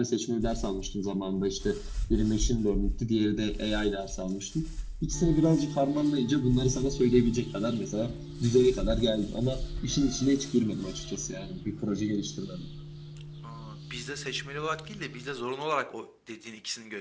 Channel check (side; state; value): both; identical; correlation 1.00